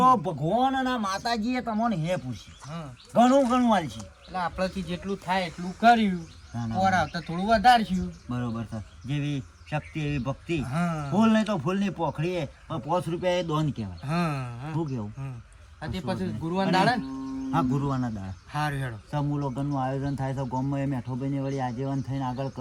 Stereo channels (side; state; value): both; identical; correlation 1.00